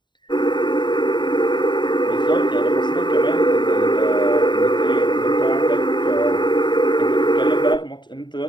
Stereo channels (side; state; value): right; late; 0.22 ms